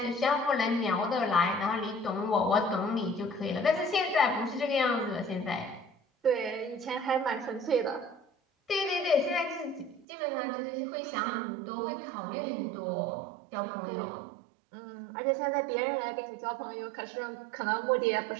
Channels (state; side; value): drops out; left; at 10.1 s